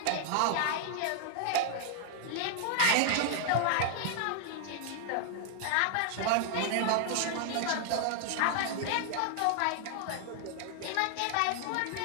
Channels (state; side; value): different; both; correlation 0.00